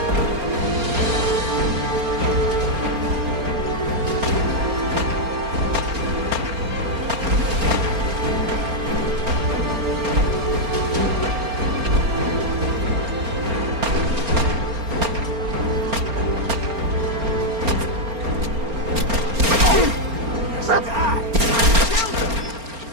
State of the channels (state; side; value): late; left; 4.3 ms